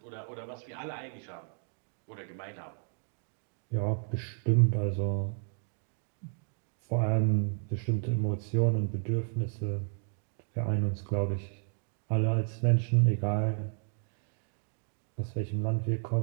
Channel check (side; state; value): left; silent; 56 dB below the other